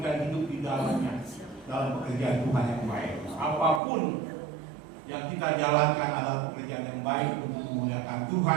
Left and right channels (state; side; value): drops out; left; at 3.8 s